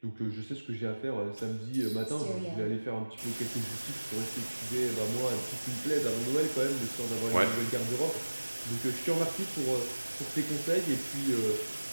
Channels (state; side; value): inverted; both; correlation -1.00